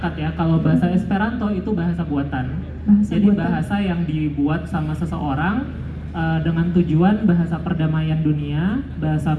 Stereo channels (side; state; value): both; identical; correlation 1.00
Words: ya. Kalau bahasa Esperanto itu bahasa buatan. Bahasa Jadi buatan. bahasa yang dibuat sama seseorang dengan tujuan bahasa perdamaian dunia, bahasa